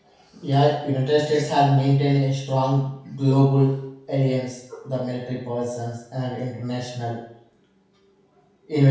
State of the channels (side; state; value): both; identical; correlation 1.00